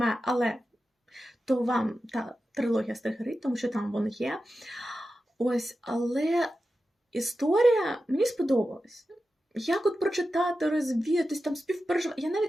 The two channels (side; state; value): both; normal; correlation 0.92